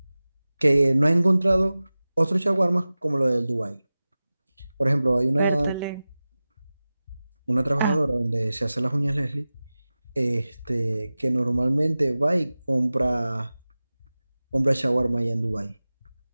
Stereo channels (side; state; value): both; inverted; correlation -0.97